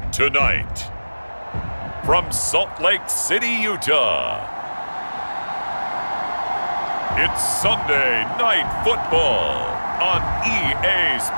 Tonight, from Salt Lake City, Utah, it's Sunday Night Football on EA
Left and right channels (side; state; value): both; inverted; correlation -1.00